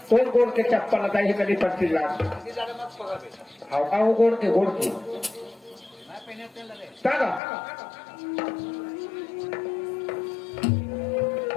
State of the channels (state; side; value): drops out; right; at 7.4 s